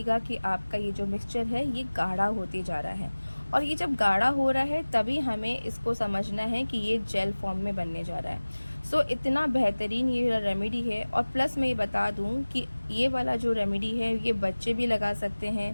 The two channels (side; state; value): both; inverted; correlation -1.00